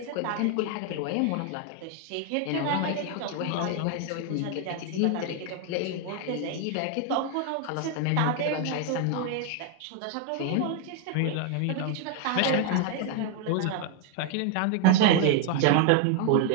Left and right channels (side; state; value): both; different; correlation 0.01